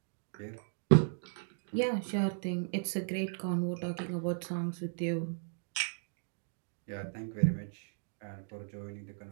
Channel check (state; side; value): silent; left; digital silence